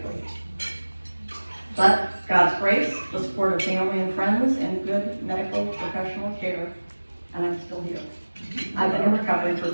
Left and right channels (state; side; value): inverted; both; correlation -1.00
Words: But God's grace, the support of family and friends, and good medical professional care and I'm still here. I've been in recovery for